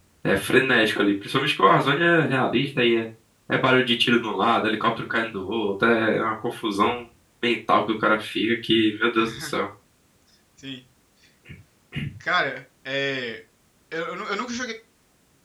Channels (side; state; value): both; identical; correlation 1.00